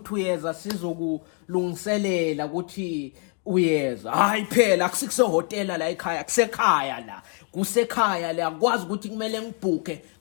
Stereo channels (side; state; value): right; quieter; 39.7 dB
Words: uyeza sizokulungiselela ukuthi uyeza? Hayi phela akusikuse-hotela la ekhaya, kusekhaya la, kusekhaya la. Akwazi ukuthi kumele ngibhuke,